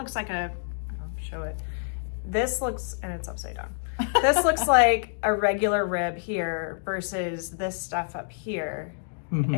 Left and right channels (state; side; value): silent; right; digital silence